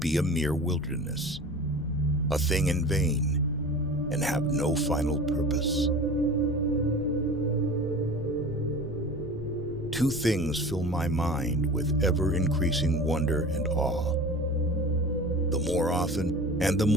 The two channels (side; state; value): left; noise; rumble, 13 dB below the sound